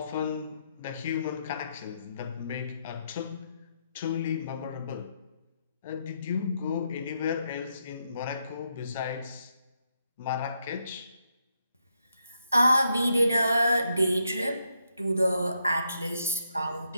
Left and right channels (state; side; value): inverted; both; correlation -0.80